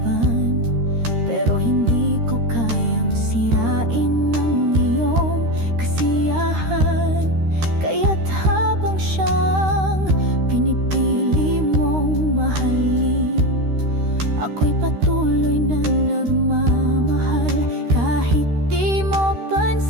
pero hindi ko kayang sirain ang iyong kasiyahan. Kaya't habang siyang pinipili mong mahalin, ako'y patuloy na nagmamahal. Kahit di mo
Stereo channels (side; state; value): left; late; 13 ms